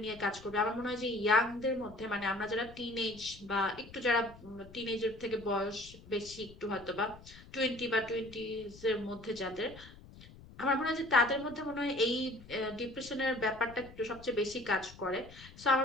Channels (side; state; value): left; noise; rumble, 19 dB below the sound